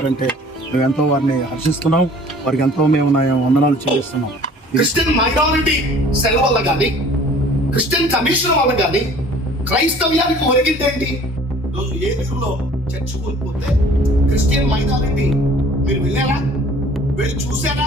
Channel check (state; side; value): normal; both; correlation 0.51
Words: మేము ఎంతో వారిని హర్షిస్తున్నాం. వారికి ఎంతో మేము వందనాలు చెల్లిస్తున్నాం. క్రిస్టియన్ మైనారిటీ సెల్ వల్ల కానీ, క్రిస్టియన్ కమిషన్ వల్ల కానీ క్రైస్తవ్యానికి ఒరిగిందేంటి? రోజు ఏలూరులో చర్చ్ కోల్పోతే క్రిస్టియన్ మైనారిటీ మీరు వెళ్ళారా? వెళ్ళి చూసారా?